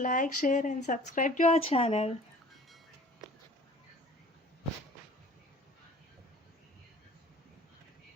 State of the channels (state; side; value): normal; both; correlation 0.48